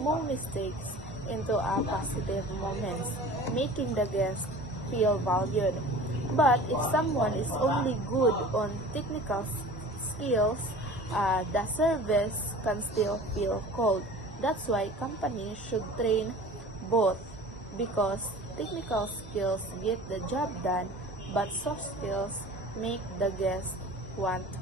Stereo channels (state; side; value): normal; both; correlation 0.41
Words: mistakes into a positive moments, making the guest feel valued. But if someone is only good on technical skills, the service can still feel cold. That's why companies should train both, because technical skills get the job done, but soft skills make the guest want to